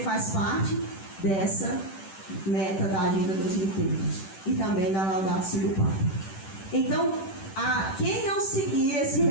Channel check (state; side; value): late; right; 10 ms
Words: parte dessa meta da Agenda 2030 e também da Laudato Si do Papa. Então, quem não seguir esse